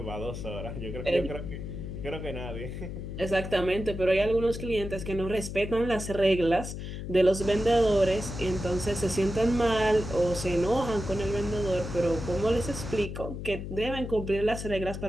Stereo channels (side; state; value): left; noise; hum, 7 dB below the sound